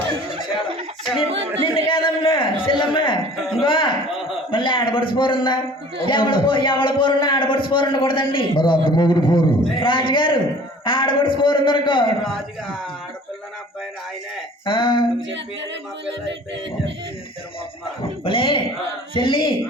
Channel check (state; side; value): normal; both; correlation 0.48